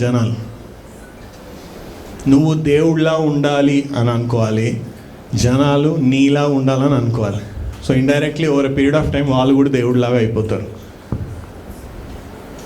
జనాలు. నువ్వు దేవుడిలా ఉండాలి అని అనుకోవాలి, జనాలు నీలా ఉండాలని అనుకోవాలి. So indirectly over a period of time వాళ్ళు కూడా దేవుడిలాగా అయిపోతారు.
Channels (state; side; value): identical; both; correlation 1.00